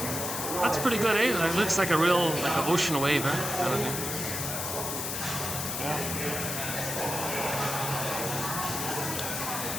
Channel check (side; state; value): left; noise; hiss, 3 dB below the sound